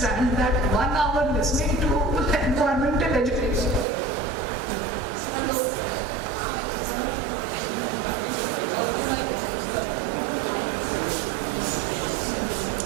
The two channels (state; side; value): drops out; left; at 3.9 s